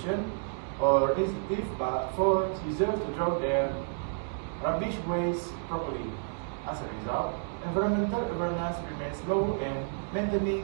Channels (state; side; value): silent; left; digital silence